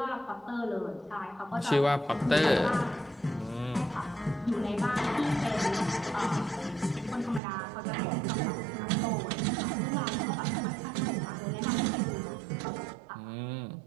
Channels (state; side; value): drops out; left; at 7.4 s